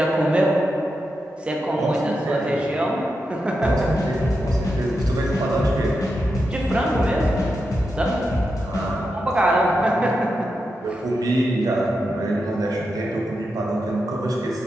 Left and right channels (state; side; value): normal; both; correlation 0.87